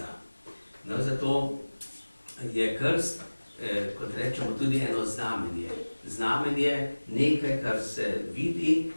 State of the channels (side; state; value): both; inverted; correlation -1.00